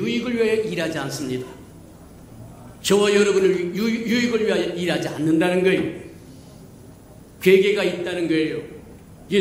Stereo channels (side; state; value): both; identical; correlation 1.00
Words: 위하여 일하지 않습니다. 저와 여러분을 유익을 위하여 일하지 않는다는 거예요. 괴계가 있다는 거예요.